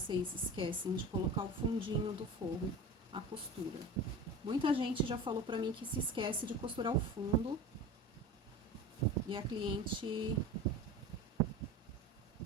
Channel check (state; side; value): normal; both; correlation 0.33